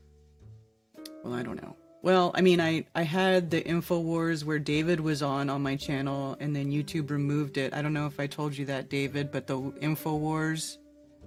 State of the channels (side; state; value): both; identical; correlation 1.00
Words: Well, I don't know. Well, I mean, I had the InfoWars where David was on my channel, and then YouTube removed it. I don't know if I told you that, David, but the InfoWars